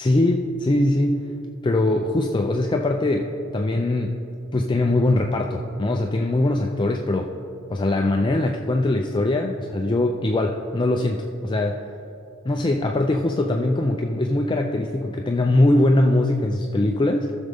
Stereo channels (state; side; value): normal; both; correlation 0.80